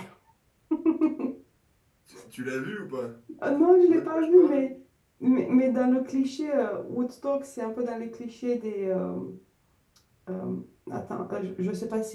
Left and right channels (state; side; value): identical; both; correlation 1.00